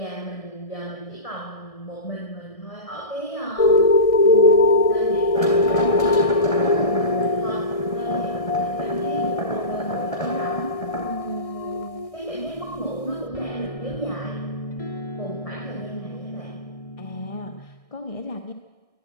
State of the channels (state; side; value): late; right; 1.6 ms